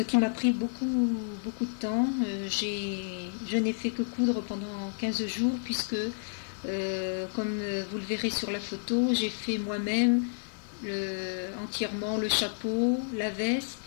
qui m'a pris beaucoup de temps. Je n'ai fait que coudre pendant 15 jours puisque, comme vous le verrez sur la photo, j'ai fait moi-même entièrement le chapeau, la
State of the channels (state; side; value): silent; right; digital silence